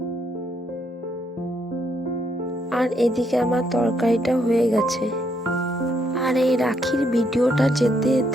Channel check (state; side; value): normal; both; correlation 0.74